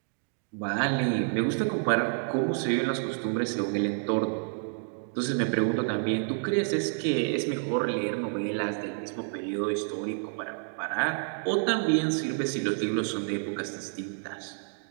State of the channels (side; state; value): left; silent; 58 dB below the other